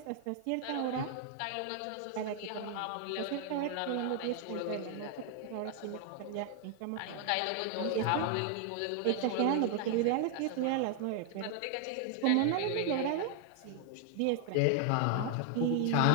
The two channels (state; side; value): different; both; correlation 0.00